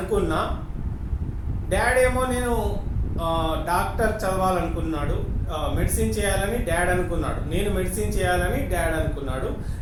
డాడ్ ఏమో నేను డాక్టర్ చదవాలనుకున్నాడు, మెడిసిన్ చేయాలని డాడ్ అనుకున్నాడు, నేను మెడిసిన్ చేయాలని డాడ్ అనుకున్నాడు,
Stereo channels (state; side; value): identical; both; correlation 1.00